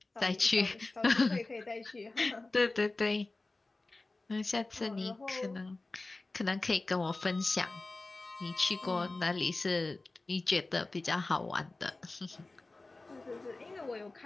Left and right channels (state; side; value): quieter; right; 3.2 dB